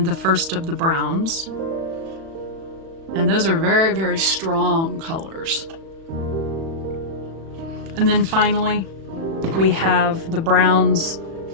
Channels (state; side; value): late; left; 36 ms